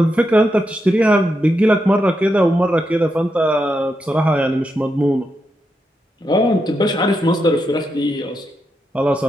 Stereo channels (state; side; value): normal; both; correlation 0.84